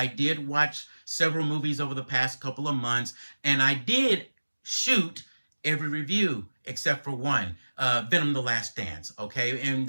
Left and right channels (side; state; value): both; inverted; correlation -1.00